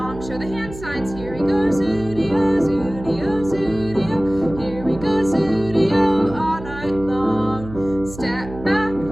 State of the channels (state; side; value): noise; right; hum, 13 dB below the sound